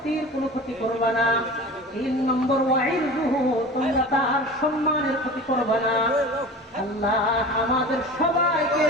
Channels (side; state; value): both; normal; correlation 0.36